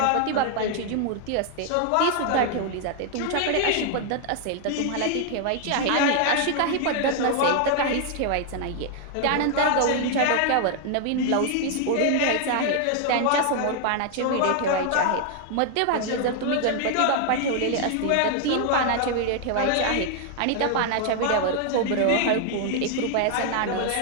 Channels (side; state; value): both; different; correlation 0.00